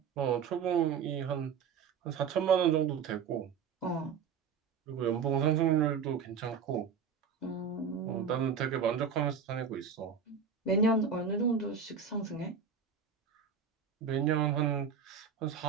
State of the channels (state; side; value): quieter; left; 6.5 dB